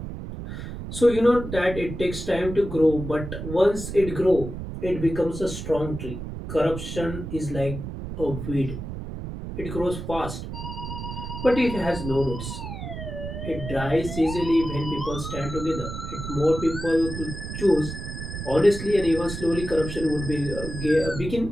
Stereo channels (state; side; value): noise; right; rumble, 7 dB below the sound